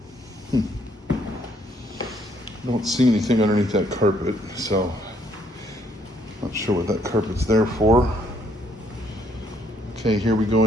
Don't see anything underneath that carpet, so not sure what that carpet's there for. Okay, here we go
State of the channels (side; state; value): both; normal; correlation 0.68